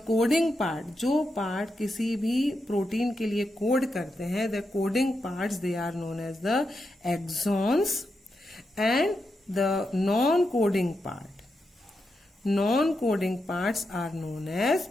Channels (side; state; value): both; normal; correlation 0.86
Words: coding part, जो पार्ट किसी भी प्रोटीन के लिए कोड करते हैं, the coding parts they are known as the exons, and the non coding parts are known as